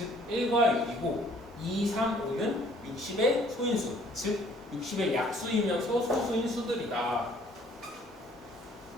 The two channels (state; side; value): normal; both; correlation 0.59